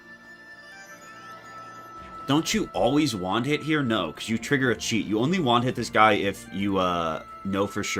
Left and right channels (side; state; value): both; identical; correlation 1.00